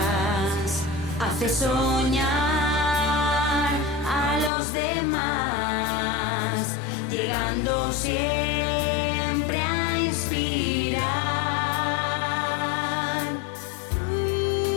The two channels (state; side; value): drops out; right; at 4.5 s